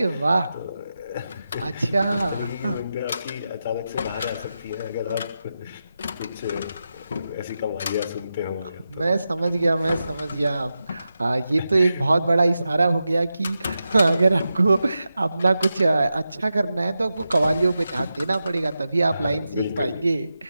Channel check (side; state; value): both; inverted; correlation -0.90